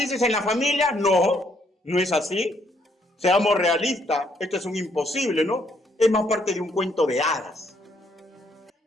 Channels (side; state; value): both; normal; correlation 0.70